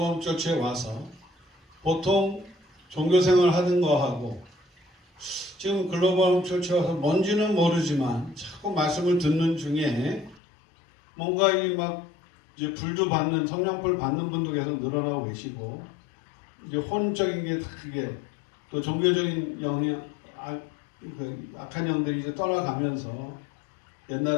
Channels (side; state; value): right; drops out; at 10.4 s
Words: 처치에 와서 보통 종교생활 하는 거하고 지금 글로벌 처치에 와서 뭔지는 모르지만 자꾸 말씀을 듣는 중에 뭔가 이 막 이제 불도 받는, 성령불 받는 분도 계속 늘어나고 계시고, 이제 혼적인 게 다 그게 또 종교적인 영향, 악한 영들이 이제 떠나가면서